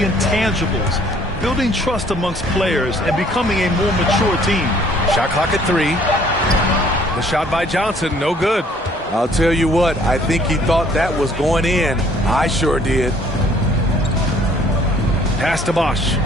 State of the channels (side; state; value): both; normal; correlation 0.59